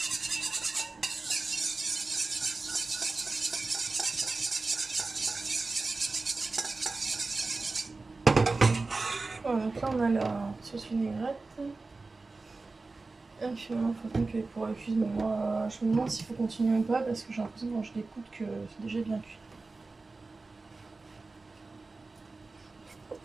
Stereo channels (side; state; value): left; quieter; 3.6 dB